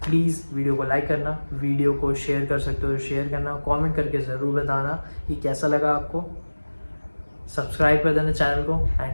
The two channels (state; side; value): inverted; both; correlation -1.00